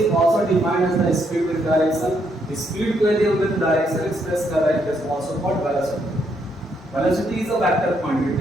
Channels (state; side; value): normal; both; correlation 0.75